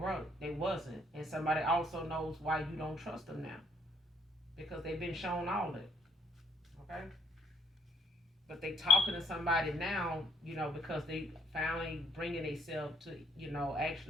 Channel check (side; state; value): both; normal; correlation 0.65